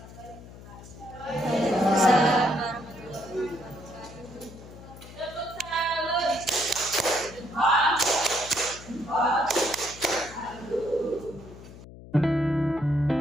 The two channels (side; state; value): left; noise; hum, 17 dB below the sound